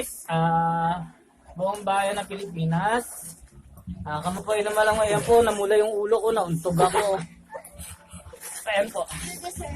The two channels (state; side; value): identical; both; correlation 1.00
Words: buong bayan ng Pilipinas. Kamo po ilang malang ngayon po, namula yung ulo ko, nauntog ako. Ayan po.